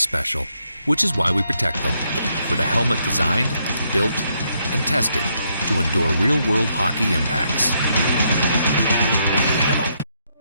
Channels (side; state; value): both; inverted; correlation -0.75